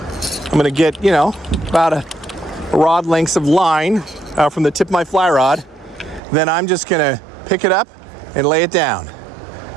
I'm gonna get, you know, about a rod lengths of line out from the tip of my fly rod. Then I'm just gonna pick it up and lay it down.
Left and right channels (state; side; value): drops out; left; at 6.2 s